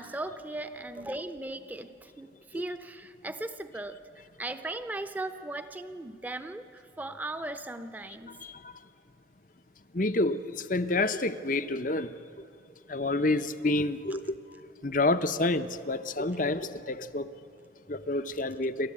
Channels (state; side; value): normal; both; correlation 0.36